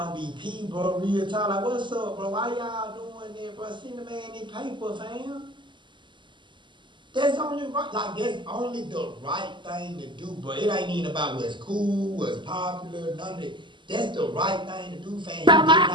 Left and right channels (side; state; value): left; late; 0.23 ms